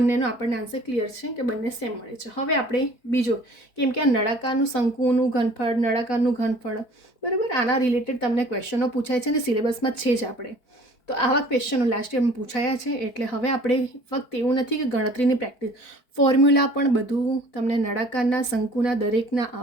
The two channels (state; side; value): late; right; 4.5 ms